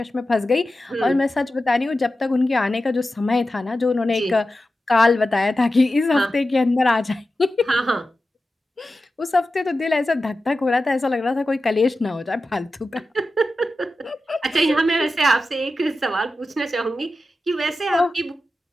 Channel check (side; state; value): both; normal; correlation 0.92